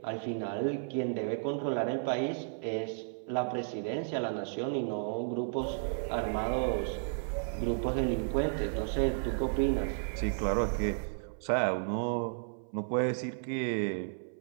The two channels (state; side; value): silent; left; 56 dB below the other